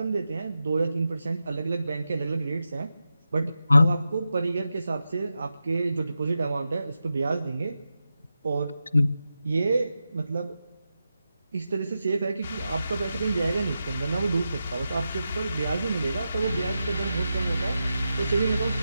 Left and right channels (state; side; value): inverted; both; correlation -0.90